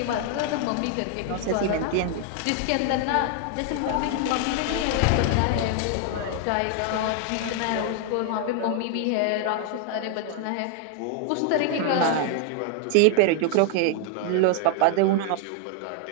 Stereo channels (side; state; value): both; different; correlation 0.00